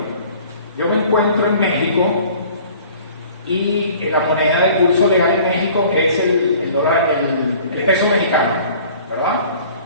yo me encuentro en México y la moneda de uso legal en México es el dólar, el peso mexicano, ¿verdad?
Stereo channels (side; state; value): both; inverted; correlation -0.50